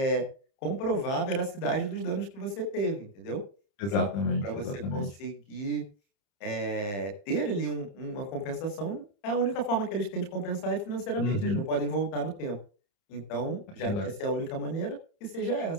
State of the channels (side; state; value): right; late; 30 ms